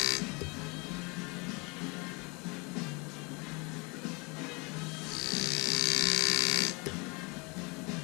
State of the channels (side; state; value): right; quieter; 28.9 dB